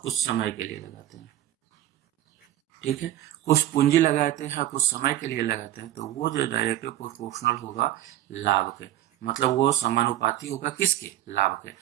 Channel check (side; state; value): left; quieter; 13.1 dB